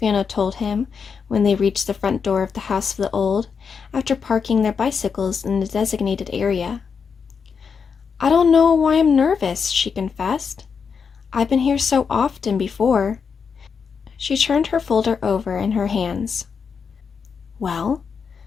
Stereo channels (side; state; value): right; quieter; 6.0 dB